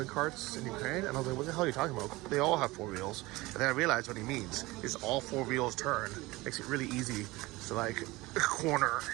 carts in Ukraine? And I was like, what the hell are you talking about? They all have 4 wheels. And then I realized what he means is all 4 wheels turn. Makes it really easy to like corner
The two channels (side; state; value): left; quieter; 20.9 dB